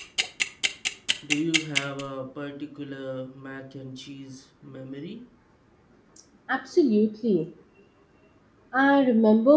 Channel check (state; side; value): identical; both; correlation 1.00